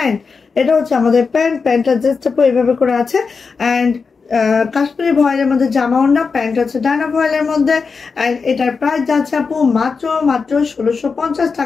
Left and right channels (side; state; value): right; quieter; 5.0 dB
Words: এটা হচ্ছে আমাদের প্যান্ট। প্যান্টটা জাস্ট আপু এইভাবে করে আছে, অ্যান্ড কাশ্মীরি ভয়েলের মধ্যে জামা ওড়না, প্যান্ট হচ্ছে ডায়না ভয়েলের মধ্যে। অ্যান্ড এটার প্রাইস যাচ্ছে আপু মাত্র 1650